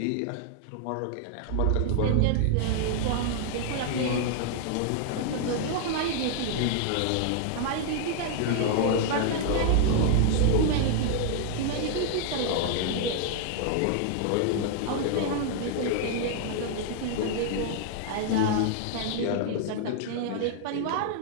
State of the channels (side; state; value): both; different; correlation 0.00